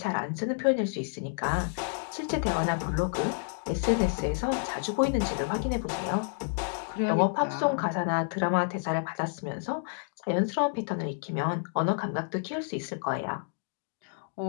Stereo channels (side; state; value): right; silent; digital silence